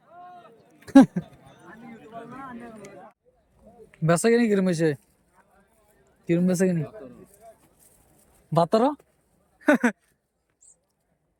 বেচা কিনি কিরম হয়েছে? কিরম বেচা কিনি? 12।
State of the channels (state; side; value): identical; both; correlation 1.00